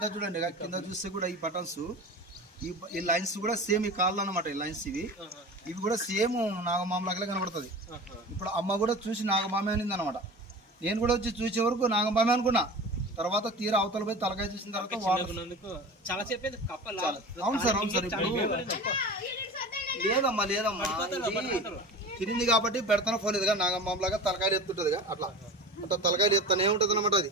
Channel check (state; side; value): normal; both; correlation 0.34